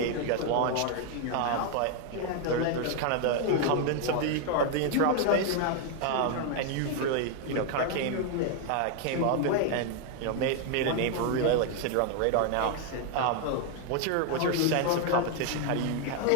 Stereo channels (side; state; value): both; different; correlation 0.00